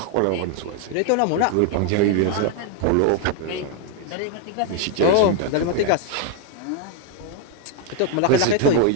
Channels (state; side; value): different; both; correlation 0.00